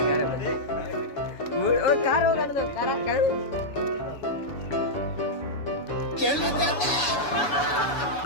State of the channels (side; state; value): right; late; 6.9 ms